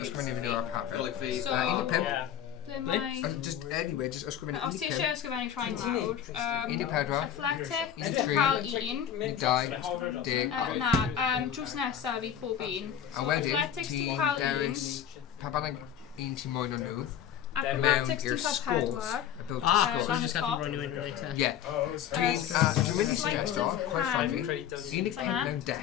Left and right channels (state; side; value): quieter; right; 9.4 dB